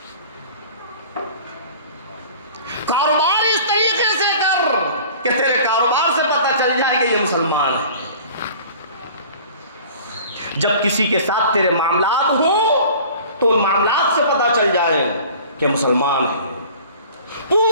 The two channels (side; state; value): both; inverted; correlation -0.45